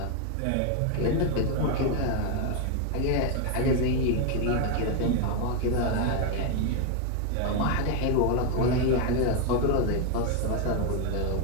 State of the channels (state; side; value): different; both; correlation 0.01